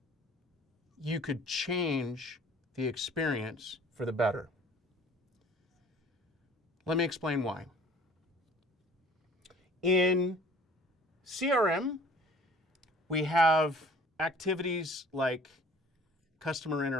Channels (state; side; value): normal; both; correlation 0.51